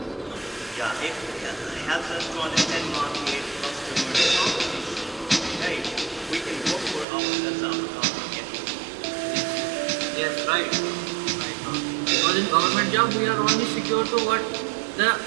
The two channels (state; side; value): drops out; left; at 7.1 s